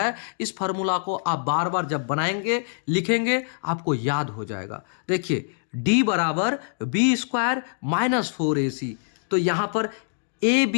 इस फॉर्मूला को आप बार बार जब बनाएंगे, लिखेंगे, आपको याद हो जाएगा। देखिए d बराबर बी स्क्वायर माइनस 4ac। तो यहां पर ए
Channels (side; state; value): right; silent; digital silence